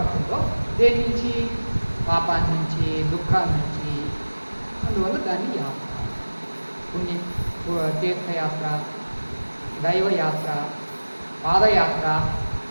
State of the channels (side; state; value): both; inverted; correlation -1.00